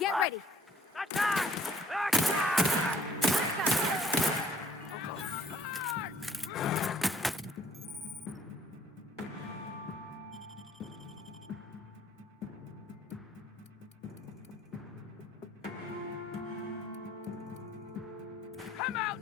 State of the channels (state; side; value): normal; both; correlation 0.59